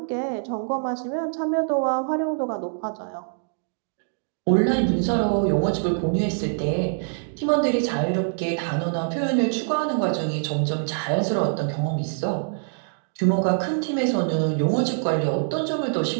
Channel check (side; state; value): left; silent; digital silence